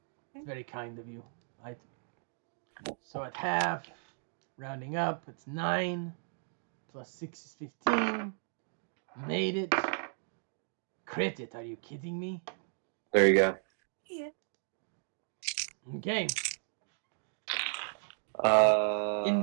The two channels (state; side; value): silent; left; 55 dB below the other